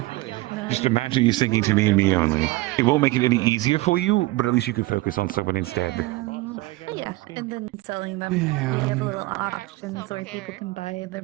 Just imagine you singing to me and me only. It won't make it any easier for you, but at least you can focus on someone instead. Yeah, and then selling them. We have little auctions where people can buy the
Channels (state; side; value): quieter; left; 20.1 dB